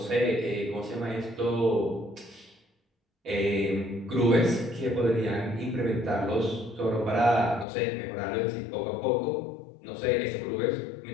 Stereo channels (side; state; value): right; drops out; at 7.7 s